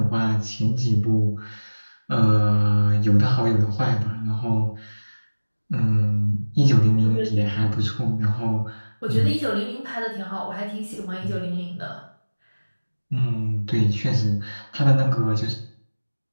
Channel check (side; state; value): both; inverted; correlation -1.00